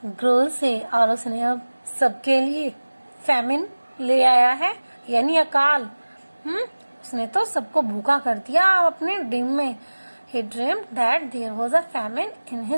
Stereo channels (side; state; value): both; inverted; correlation -1.00